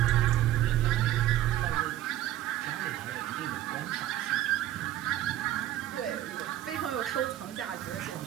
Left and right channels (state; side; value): quieter; left; 13.3 dB